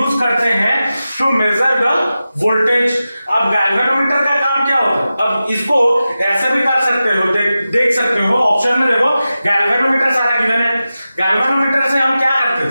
करते हैं टू मेजर द वोल्टेज। अब गैल्वेनोमीटर का काम क्या होता है, अब इसको ऐसे भी कर सकते हो, देख सकते हो ऑप्शन में, देखो गैल्वेनोमीटर सारा गिवन है। गैल्वेनोमीटर से हम क्या करते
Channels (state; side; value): inverted; both; correlation -0.93